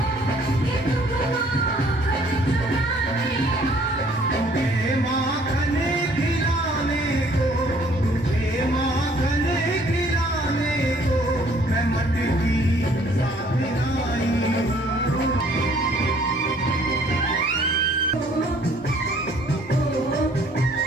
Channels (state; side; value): normal; both; correlation 0.60